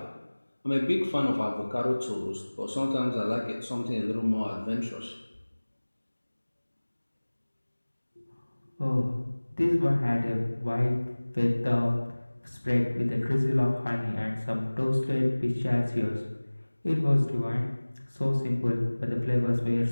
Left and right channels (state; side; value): inverted; both; correlation -1.00